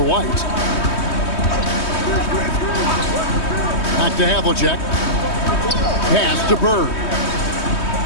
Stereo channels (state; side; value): late; right; 3.2 ms